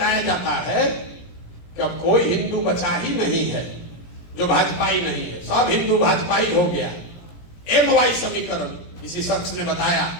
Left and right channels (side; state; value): right; late; 17 ms